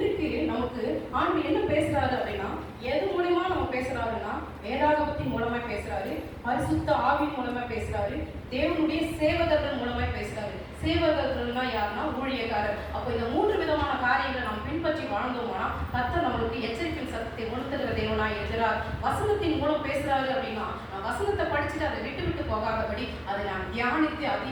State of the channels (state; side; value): identical; both; correlation 1.00